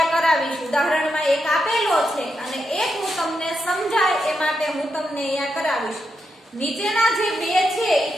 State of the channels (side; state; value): both; normal; correlation 0.84